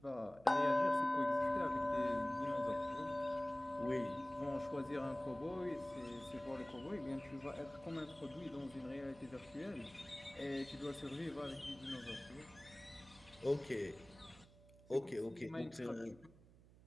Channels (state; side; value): noise; right; hum, 23 dB below the sound